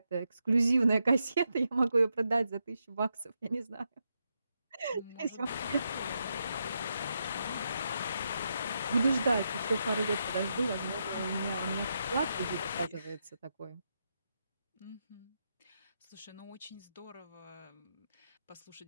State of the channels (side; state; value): both; inverted; correlation -0.83